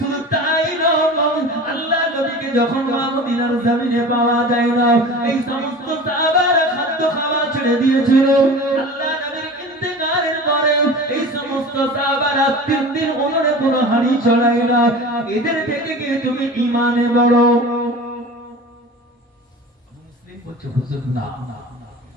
তাই নয়, আল্লাহ নবীকে যখন মদিনার জমিনে পাওয়া যায় না, এই সমস্ত সাহাবারা খাদ্য খাওয়া ছেড়ে দিয়েছিল। আল্লাহ নবীর ইন্তেকালের পরে এই সমস্ত সাহাবারা 3 দিন উনুনে কোনো হাঁড়ি চড়ায় না। এদের থেকে কি তুমি ঈমানে বড়? মুসলিম বলছে হুজুর না,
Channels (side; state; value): both; normal; correlation 0.37